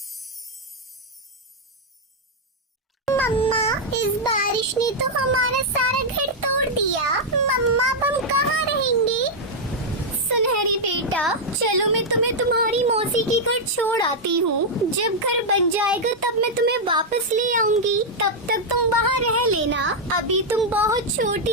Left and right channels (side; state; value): both; normal; correlation -0.02